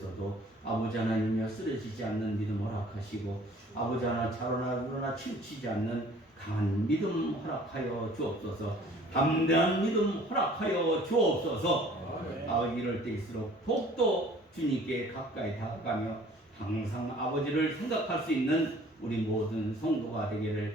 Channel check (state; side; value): normal; both; correlation 0.52